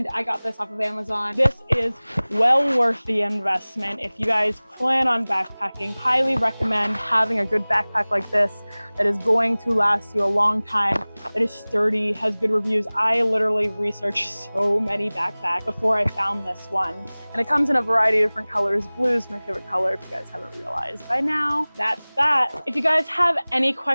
I got this off of Amazon. This is well worth the investment. If you guys plan on backpacking, highly recommend having a good backpack like this that is going to last you a long time, that is sturdy, has good reviews. I literally researched so many backpacks before I found this one. And it comes in a variety of different colors. Blue is my favorite color, if you guys haven't realized by now. That's that. If you guys have any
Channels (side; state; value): both; inverted; correlation -1.00